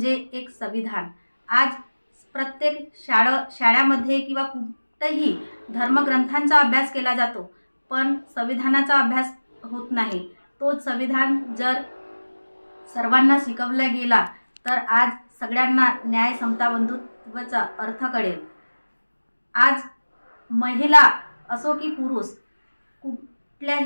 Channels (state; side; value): inverted; both; correlation -1.00